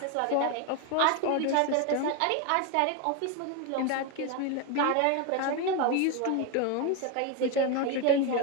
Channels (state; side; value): different; both; correlation 0.02